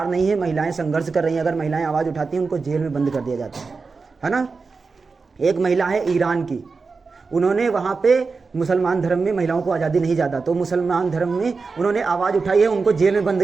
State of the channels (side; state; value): left; quieter; 4.5 dB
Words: नहीं है, महिलाएं संघर्ष कर रही हैं, अगर महिलाएं आवाज़ उठाती हैं उनको जेल में बंद कर दिया जाता है ना। एक महिला है ईरान की, उन्होंने वहाँ पे मुसलमान धर्म में महिलाओं को आज़ादी नहीं ज़्यादा, तो मुसलमान धर्म में उन्होंने आवाज़ उठाई है, उनको जेल में बंद